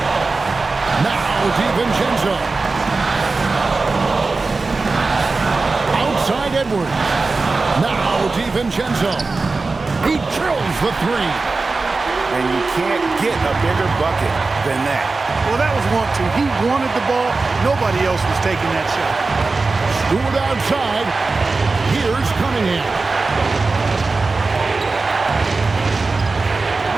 Now DiVincenzo. Outside Edwards. Now DiVincenzo. He drills the three. And you can't get a bigger bucket than that. Well, that was 1-2. He wanted the ball. Nobody else was taking that shot. Stewart outside. Here's Cunningham.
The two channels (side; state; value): left; quieter; 3.8 dB